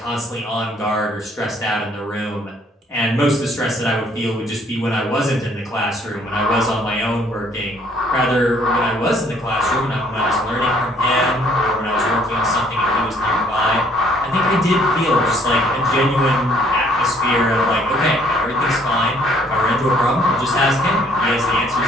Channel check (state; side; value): normal; both; correlation 0.62